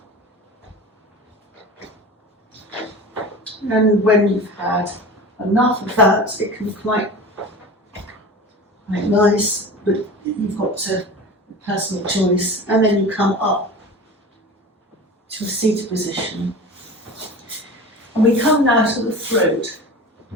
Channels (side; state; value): both; normal; correlation 0.34